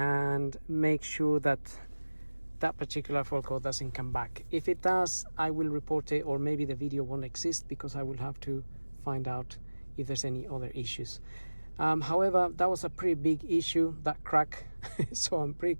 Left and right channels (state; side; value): inverted; both; correlation -1.00